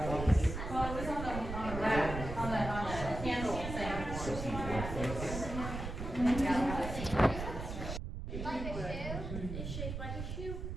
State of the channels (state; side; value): noise; right; rumble, 6 dB below the sound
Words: Well, it was on the rack, on the candle thing. It's shaped like a shoe.